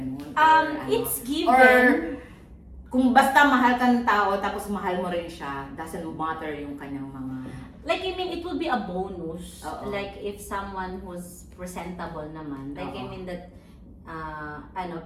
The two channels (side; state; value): both; identical; correlation 1.00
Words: Or It's given. Or kung basta mahal ka ng tao tapos mahal mo rin siya, doesn't matter yung kanyang mga... Like, I mean, it will be a bonus. Oo. Like, if someone who's presentable naman. Like, I Oo. mean that,